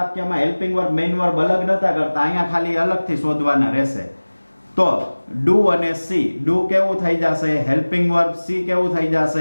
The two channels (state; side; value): inverted; both; correlation -1.00